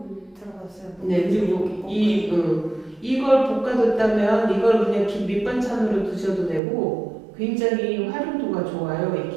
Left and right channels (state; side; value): drops out; left; at 6.6 s